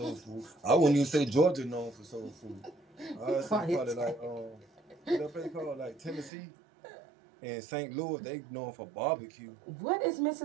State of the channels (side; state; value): left; drops out; at 6.3 s